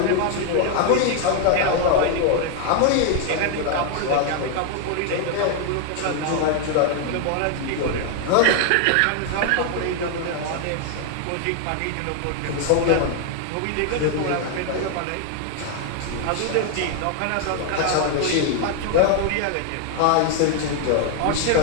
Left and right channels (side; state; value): both; different; correlation 0.00